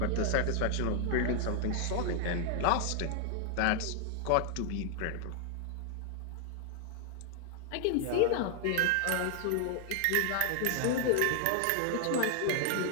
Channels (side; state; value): both; different; correlation 0.00